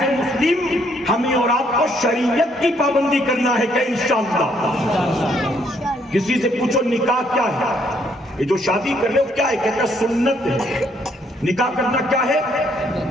مسلم ہمیں اور آپ کو شریعت کی پابندی کرنا ہے کہ انشاءاللہ. کسی سے پوچھو نکاح کیا ہے، یہ جو شادی کر رہے ہو کیا ہے، کہتا ہے سنت ہے. نکاح کرنا کیا ہے؟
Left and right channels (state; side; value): normal; both; correlation 0.69